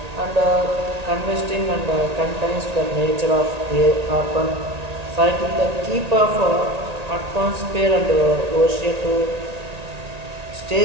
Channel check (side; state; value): left; late; 1.9 ms